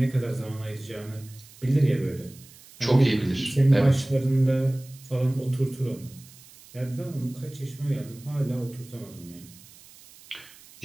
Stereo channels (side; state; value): right; noise; hiss, 22 dB below the sound